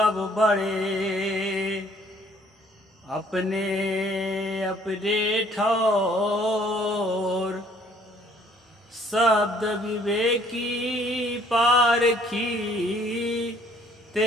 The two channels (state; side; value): normal; both; correlation 0.60